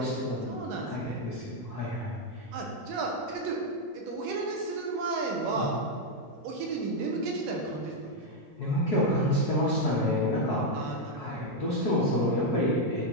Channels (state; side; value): normal; both; correlation 0.01